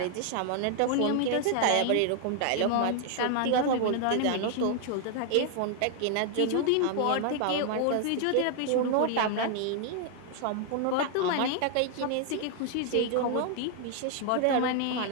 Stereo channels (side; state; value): both; different; correlation 0.00